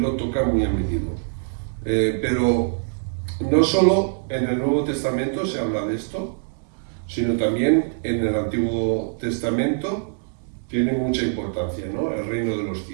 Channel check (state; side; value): silent; left; digital silence